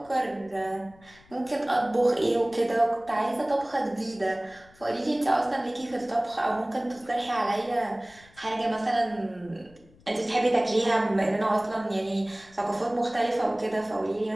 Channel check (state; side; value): noise; left; rumble, 27 dB below the sound